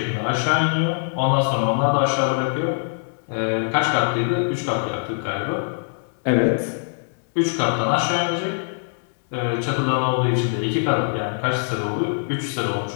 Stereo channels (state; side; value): silent; right; 63 dB below the other